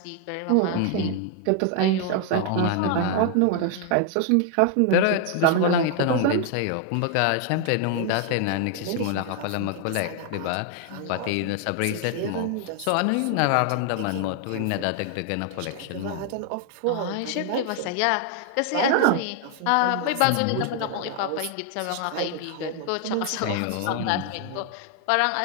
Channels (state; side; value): different; both; correlation 0.00